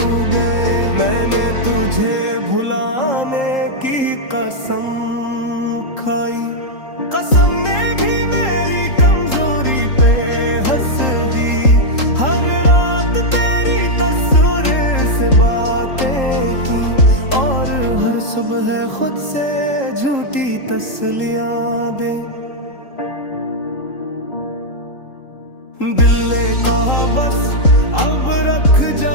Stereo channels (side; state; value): right; late; 3.8 ms